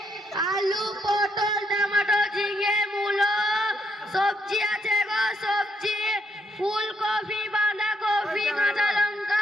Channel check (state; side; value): normal; both; correlation 0.74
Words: আলু পটল টমেটো ঝিঙে মূলো, সবজি আছে গো সবজি, ফুলকপি বাঁধাকপি কাঁচা লঙ্কা,